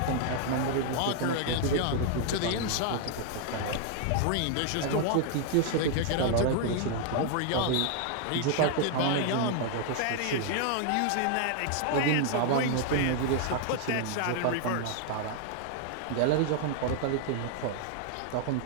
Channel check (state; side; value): different; both; correlation 0.00